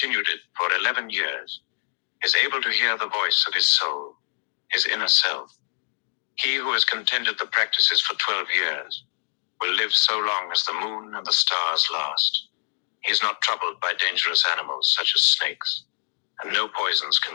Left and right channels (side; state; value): right; silent; digital silence